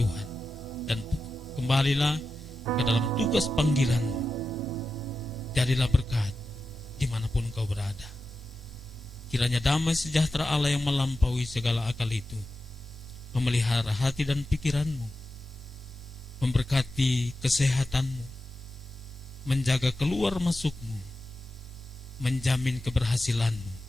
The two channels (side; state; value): both; normal; correlation 0.91